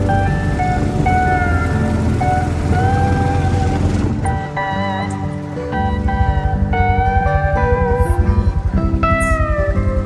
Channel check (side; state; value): both; identical; correlation 1.00